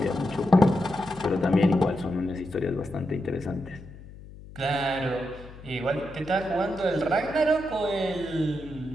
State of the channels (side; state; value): left; noise; hum, 17 dB below the sound